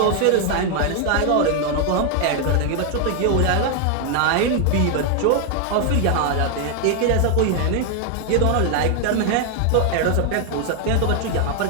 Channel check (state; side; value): different; both; correlation 0.00